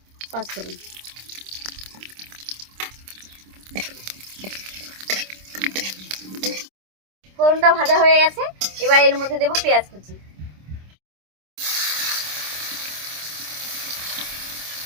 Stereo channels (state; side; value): late; left; 26 ms